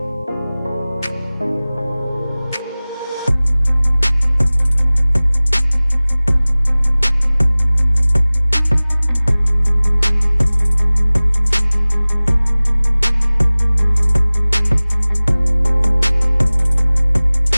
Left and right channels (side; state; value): both; inverted; correlation -0.99